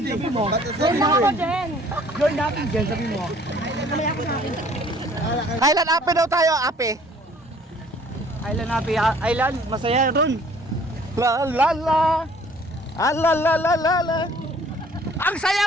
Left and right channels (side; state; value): both; normal; correlation 0.56